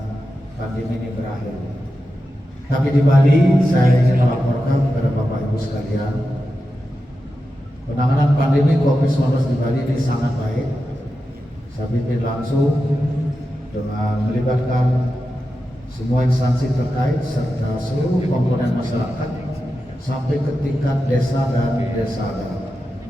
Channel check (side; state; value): both; normal; correlation 0.90